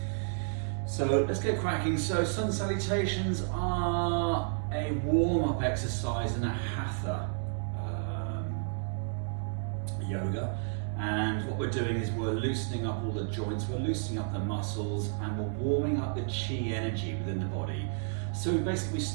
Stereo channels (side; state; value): left; silent; digital silence